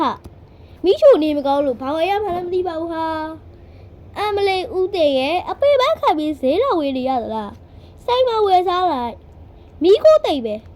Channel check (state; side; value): identical; both; correlation 1.00